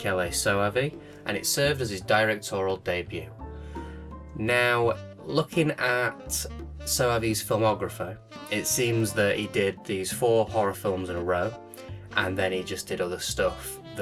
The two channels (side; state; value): both; identical; correlation 1.00